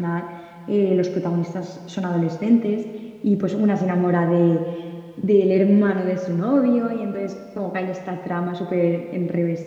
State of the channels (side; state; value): both; identical; correlation 1.00